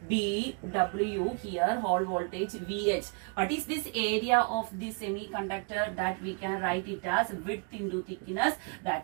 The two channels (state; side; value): quieter; left; 36.8 dB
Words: B W, here Hall voltage VH. What is this area of this semiconductor? That we can write it as width into thickness,